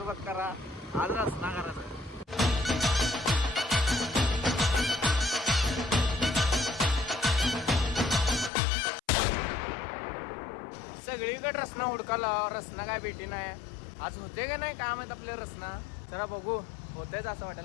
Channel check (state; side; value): drops out; right; at 8.5 s